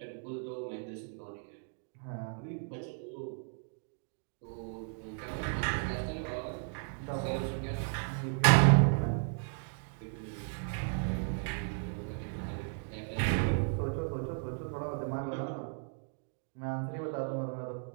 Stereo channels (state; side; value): silent; left; 54 dB below the other